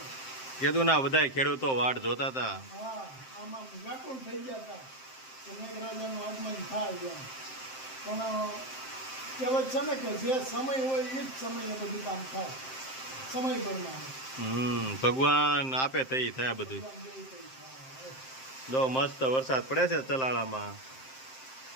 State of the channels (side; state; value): right; late; 7.6 ms